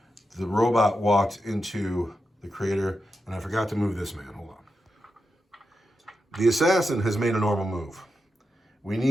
The robot walked into the crater. And I forgot to move this man. Hold on. The Assassin has made a normal move. We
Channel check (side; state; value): both; normal; correlation 0.88